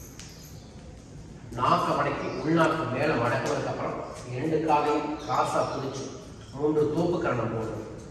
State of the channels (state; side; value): identical; both; correlation 1.00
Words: நாக்க மடக்கி உள்நாக்கு மேலே மடக்குனதுக்கு அப்புறம் 2 காலையும் காசா பிடிச்சு 3 தோப்பு கரணம் போடும்.